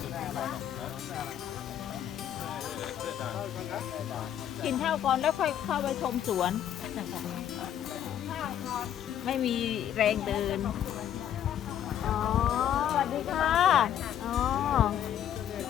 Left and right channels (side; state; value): right; quieter; 10.4 dB